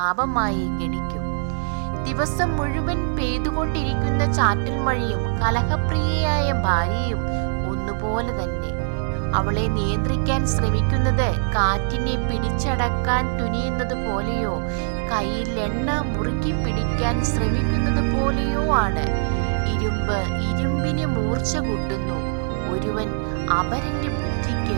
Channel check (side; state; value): left; silent; 62 dB below the other